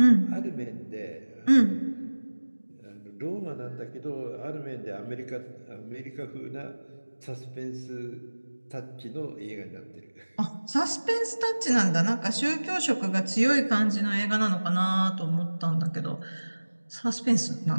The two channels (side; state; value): both; inverted; correlation -1.00